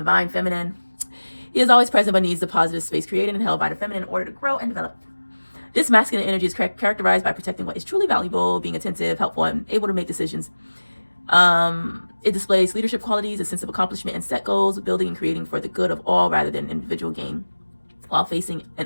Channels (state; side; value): inverted; both; correlation -1.00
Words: feminine. He is always present but needs the positive space created and held by the feminine in order to grow and develop. This masculine energy is characterized by protecting what is truly valuable, being attentive, helpful, and able to make decisions. It displays leadership qualities, a sense of accomplishment, and set goals, building and creating for the good of all rather than individual gain, while facing and